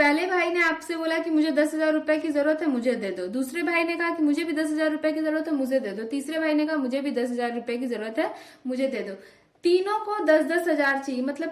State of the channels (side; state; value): both; identical; correlation 1.00